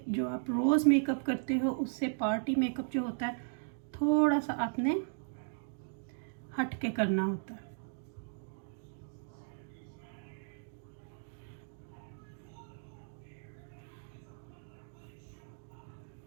जो आप रोज़ मेकअप करते हो उससे पार्टी मेकअप जो होता है थोड़ा सा आपने हट के करना होता है।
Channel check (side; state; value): left; silent; digital silence